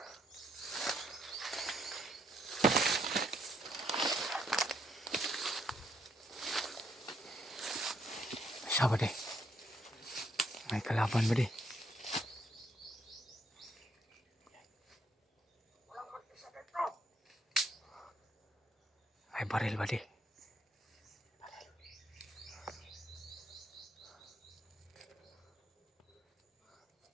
Siya ba di? May kalaban ba di? May baril ba di?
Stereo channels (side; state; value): both; normal; correlation 0.72